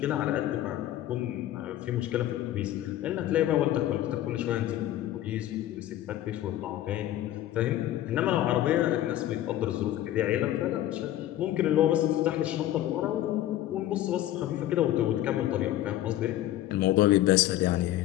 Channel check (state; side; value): quieter; right; 13.5 dB